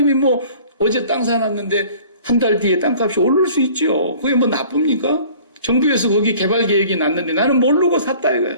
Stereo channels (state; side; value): inverted; both; correlation -0.49